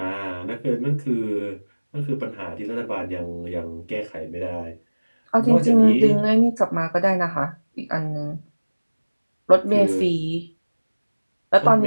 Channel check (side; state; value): both; inverted; correlation -1.00